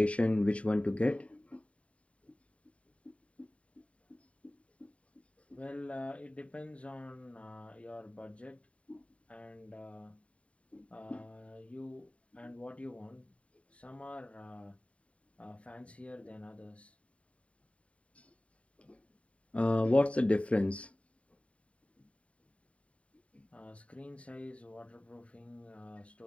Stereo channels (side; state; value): right; late; 0.064 ms